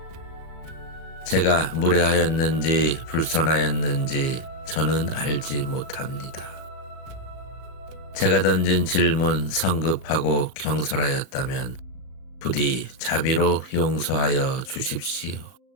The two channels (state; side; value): late; right; 37 ms